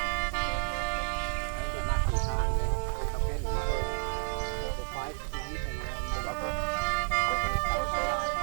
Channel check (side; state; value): left; silent; 57 dB below the other